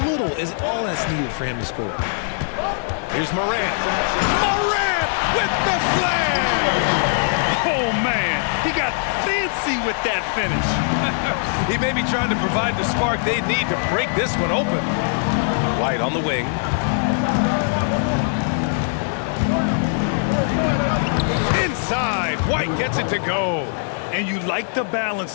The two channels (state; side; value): silent; right; 57 dB below the other